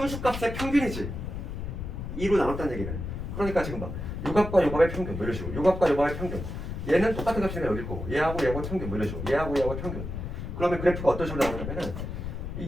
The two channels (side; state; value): left; noise; rumble, 6 dB below the sound